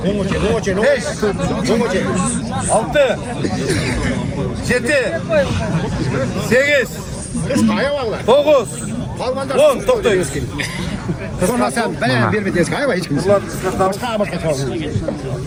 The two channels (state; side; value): identical; both; correlation 1.00